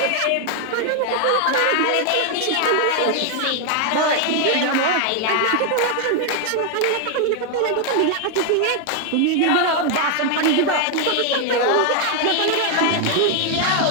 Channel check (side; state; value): both; different; correlation 0.00